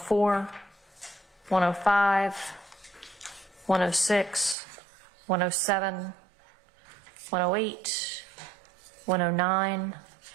105, 106, 107, 108, 109,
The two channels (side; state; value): left; drops out; at 4.5 s